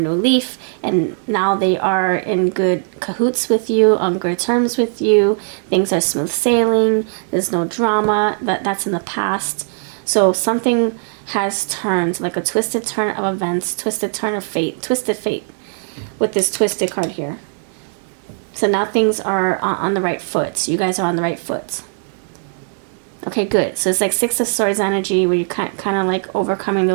leaf, and now they are in good cahoots with you, on good terms with you. Things are smooth sailing. There's no drama. That's in the past. So something has turned, like a twisted turn of events, twisted turn of fate, twisted fate, with this twisted card here. So now things are on the right foot. You guys are on the right foot. Okay, good. So it's like 6 of Swords energy, where you're kind of like overcoming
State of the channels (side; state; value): left; silent; digital silence